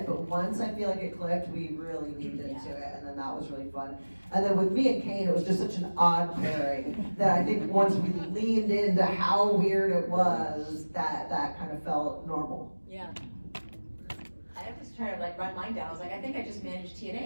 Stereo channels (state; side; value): inverted; both; correlation -1.00